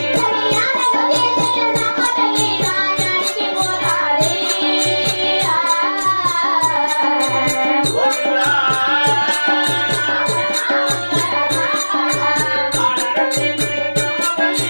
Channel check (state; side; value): inverted; both; correlation -1.00